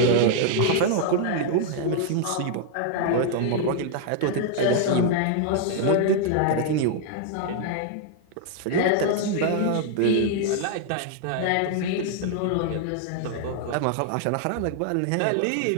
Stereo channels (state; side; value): different; both; correlation 0.00